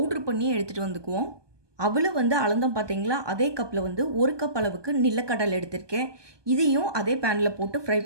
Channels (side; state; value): left; late; 1.2 ms